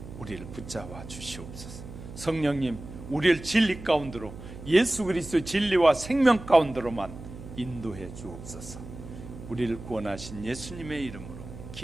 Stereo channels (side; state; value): right; noise; hum, 13 dB below the sound